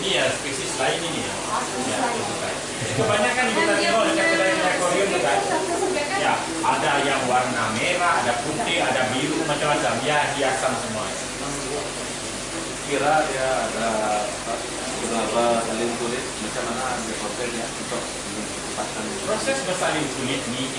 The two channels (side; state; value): both; identical; correlation 1.00